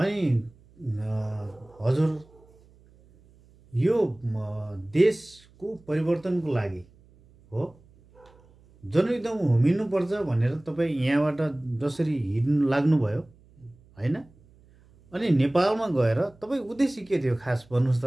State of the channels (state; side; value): noise; right; hum, 28 dB below the sound